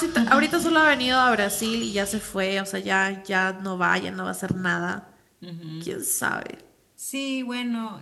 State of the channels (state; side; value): identical; both; correlation 1.00